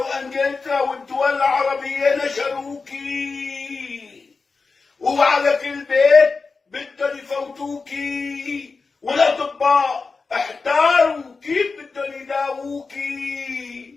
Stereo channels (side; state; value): right; quieter; 4.4 dB